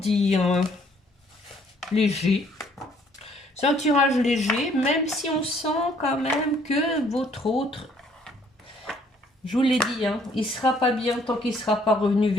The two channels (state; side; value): normal; both; correlation 0.63